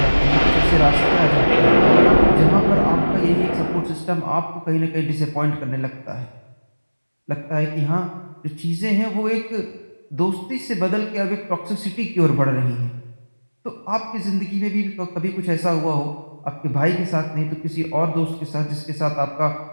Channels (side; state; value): both; inverted; correlation -1.00